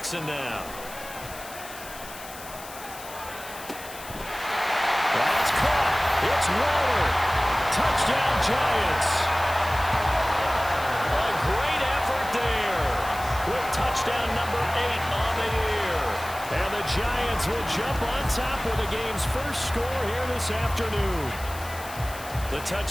now. That's caught. It's Waller. Touchdown Giants. A great effort there. Quick touchdown Giants will jump on top with the game's first score here this afternoon. The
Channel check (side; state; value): left; noise; hiss, 15 dB below the sound